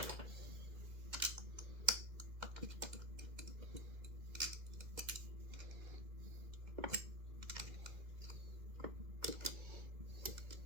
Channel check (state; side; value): late; left; 2.0 ms